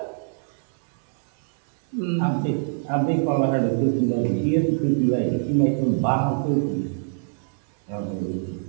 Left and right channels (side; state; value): left; silent; digital silence